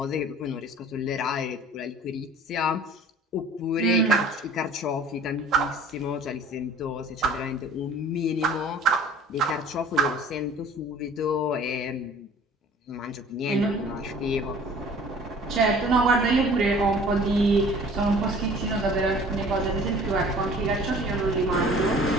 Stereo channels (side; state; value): both; normal; correlation 0.48